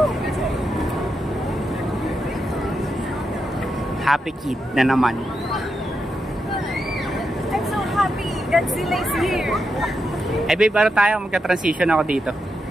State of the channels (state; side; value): normal; both; correlation 0.85